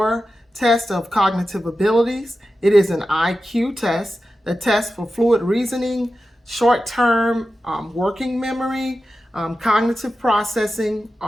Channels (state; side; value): normal; both; correlation 0.92